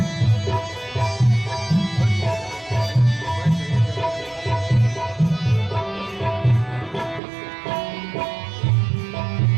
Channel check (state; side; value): drops out; left; at 7.2 s